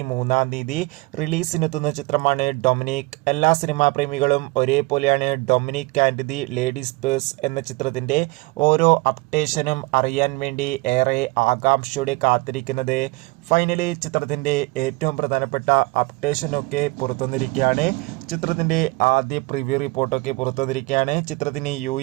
റിലീസിനെത്തുന്ന ചിത്രമാണ് ഡൊമിനിക്. എല്ലാ സിനിമാ പ്രേമികളും ഒരേപോലെ Dominic and the ladies purse എന്ന ചിത്രത്തിന്റെ ഓരോ അപ്ഡേഷനും അറിയാൻ വേണ്ടി ഏറെ ആകാംക്ഷയോടെ കാത്തിരിക്കുന്നത്. ഫൈനലി ചിത്രത്തിന്റെ ഏറ്റവും പ്രധാനപ്പെട്ട അപ്ഡേഷനൊക്കെ പുറത്തുവന്നിരിക്കുകയാണ്. ചിത്രത്തിന്റെ ആദ്യ പ്രിവ്യൂ റിപ്പോർട്ടൊക്കെ പുറത്തുവന്നിരിക്കുകയാണ്. ചിത്രത്തിന്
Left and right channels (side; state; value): left; quieter; 24.5 dB